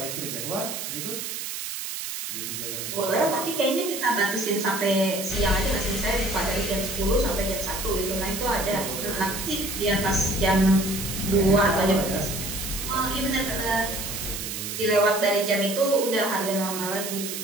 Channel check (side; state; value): right; noise; hiss, 6 dB below the sound